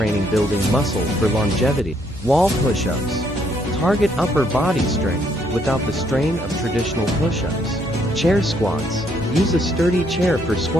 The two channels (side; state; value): both; normal; correlation 0.70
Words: Building muscle for longevity. Wall push-ups. Target upper body strength without the strain of traditional push-ups. Chair squats. Use a sturdy chair for